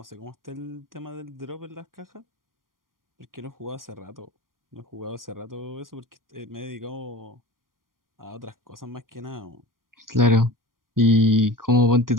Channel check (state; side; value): late; left; 0.91 ms